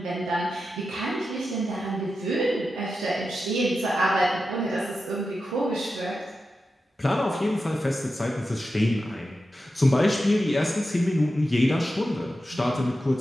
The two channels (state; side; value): normal; both; correlation 0.90